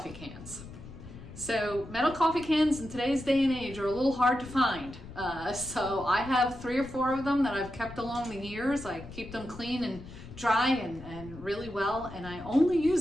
cans. So metal coffee cans in today's day and age are a little hard to find. So I have 3 or 4 of them that I've kept along the years. I keep them clean and dry and really well, and I only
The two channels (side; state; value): left; noise; rumble, 15 dB below the sound